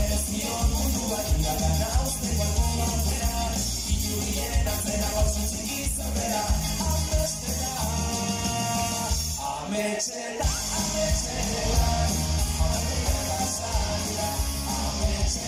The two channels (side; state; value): both; identical; correlation 1.00